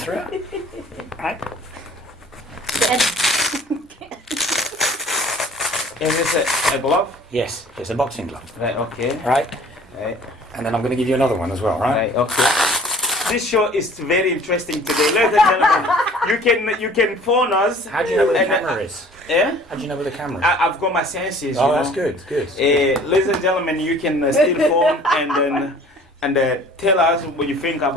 it. Right. is this a glove? Yes, it's a boxing glove. Right. Okay. Right? Right. And then I'm going to give you another one as well, right? Right. Okay. This show is very interesting today, ladies and gentlemen. You can phone us. How do you know where the and, camera is? Yeah. How do you know where the camera is? I've got my senses. Oh, you that's know. good, good. Ladies and gentlemen, you can still phone and tell us what you think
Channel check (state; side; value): normal; both; correlation 0.50